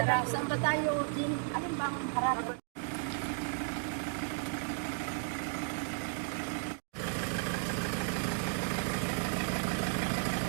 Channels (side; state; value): left; silent; 55 dB below the other